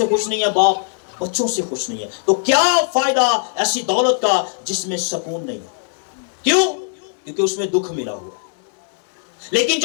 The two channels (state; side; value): silent; right; digital silence